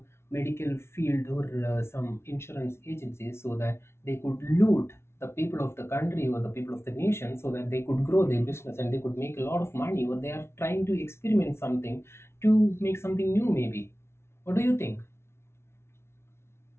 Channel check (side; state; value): right; late; 0.12 ms